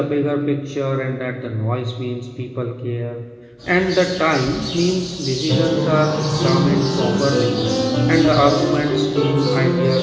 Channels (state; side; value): identical; both; correlation 1.00